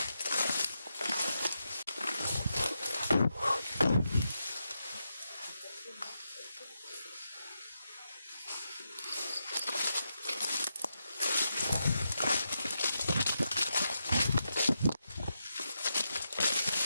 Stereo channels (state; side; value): inverted; both; correlation -0.86